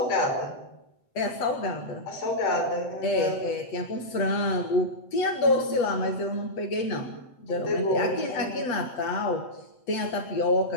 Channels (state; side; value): late; right; 7.9 ms